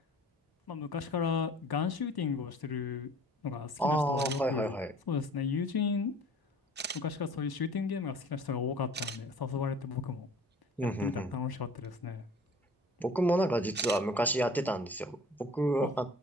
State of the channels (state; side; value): normal; both; correlation 0.48